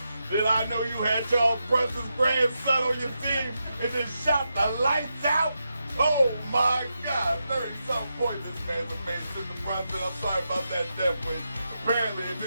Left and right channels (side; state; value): both; inverted; correlation -0.87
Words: did I know you had Charles Brunson's grandson on your team and just shot the lights out? Oh my God, 30-something points this man's made, Mr. Brunson. I'm sorry about that death wish. Apparently, if